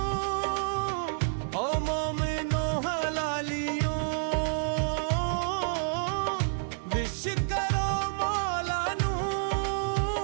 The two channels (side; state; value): left; silent; digital silence